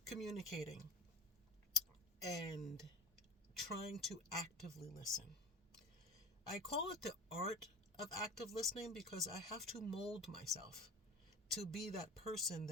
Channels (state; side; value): normal; both; correlation 0.32